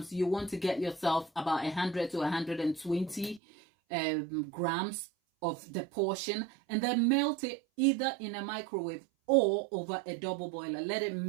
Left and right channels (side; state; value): left; drops out; at 3.4 s